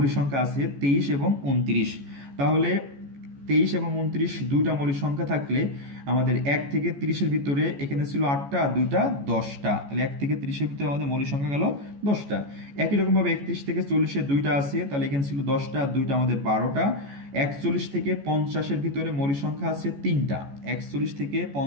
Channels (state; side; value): late; left; 14 ms